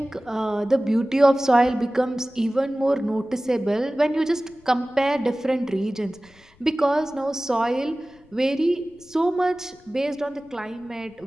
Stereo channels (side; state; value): left; noise; rumble, 29 dB below the sound